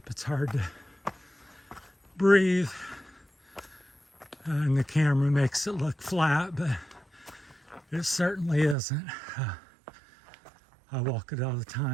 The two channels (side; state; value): left; drops out; at 8.8 s